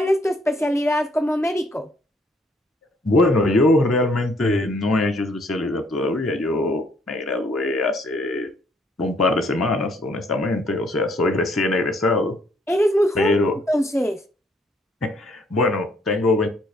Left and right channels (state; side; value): normal; both; correlation 0.66